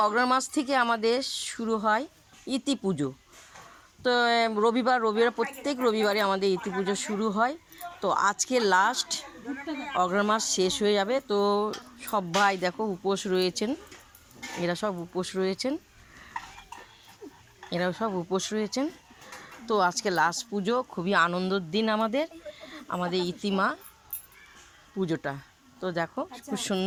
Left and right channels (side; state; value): both; identical; correlation 1.00